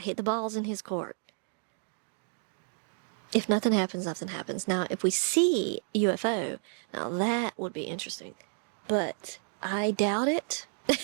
the balls in his court. If nothing happens, nothing happens. Now, if we see UFO, now that would be interesting. But I doubt it.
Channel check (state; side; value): silent; left; 57 dB below the other